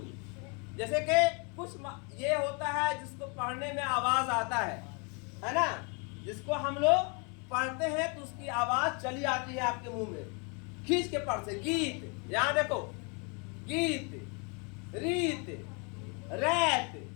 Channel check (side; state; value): right; quieter; 34.2 dB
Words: जैसे कि कुछ ये होता है जिसको पढ़ने में आवाज आता है ना, जिसको हम लोग पढ़ते हैं तो उसकी आवाज चली आती है आपके मुंह में, खींच के पढ़ से। गीत, यहां देखो, गीत, रीत, रैत,